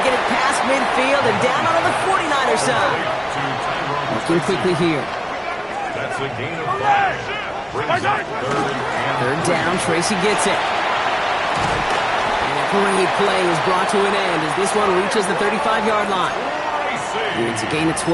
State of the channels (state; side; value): identical; both; correlation 1.00